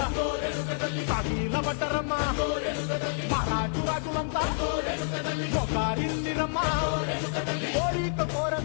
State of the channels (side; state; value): right; silent; digital silence